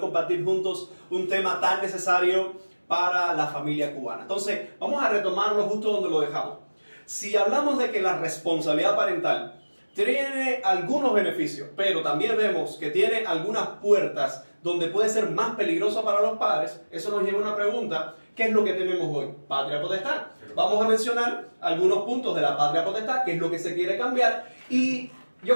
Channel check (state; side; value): inverted; both; correlation -1.00